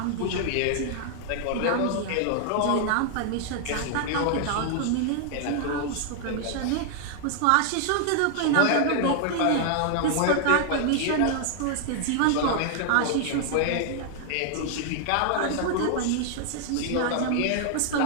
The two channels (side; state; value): both; different; correlation 0.00